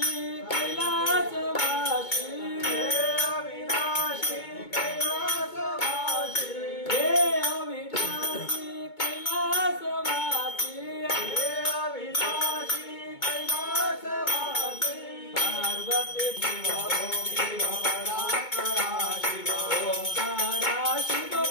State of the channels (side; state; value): right; late; 2.2 ms